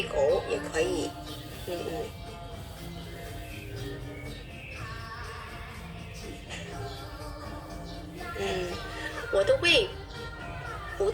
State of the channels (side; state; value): both; identical; correlation 1.00